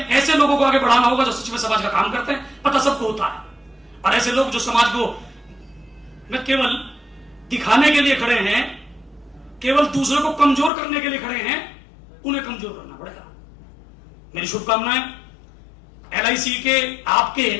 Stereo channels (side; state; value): right; drops out; at 10.7 s